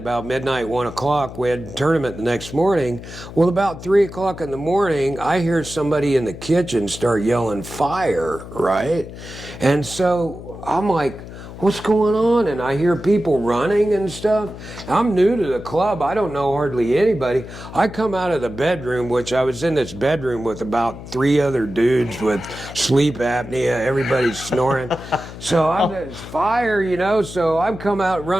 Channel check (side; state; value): left; noise; hum, 13 dB below the sound